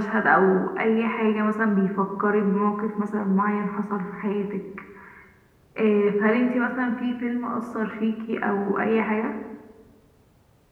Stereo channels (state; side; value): identical; both; correlation 1.00